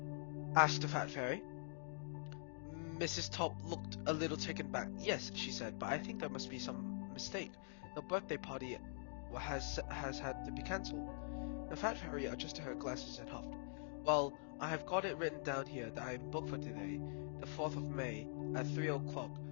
asked the fat fairy. Mrs. Top looked a little taken back. "Yes," she said, "but I think there must be some mistake. The birthday party has had to be cancelled." The fat fairy adjusted her glasses and huffed. "Well, I have got it written down here that I am booked for today, the 4th of May, at 3 o'clock,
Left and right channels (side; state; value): right; silent; digital silence